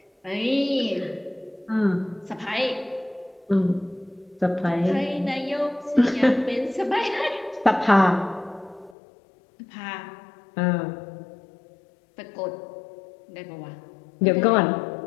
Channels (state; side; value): drops out; right; at 9.0 s